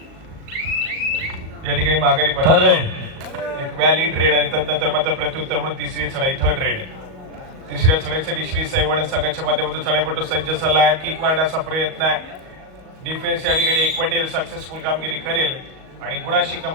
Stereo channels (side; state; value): left; late; 38 ms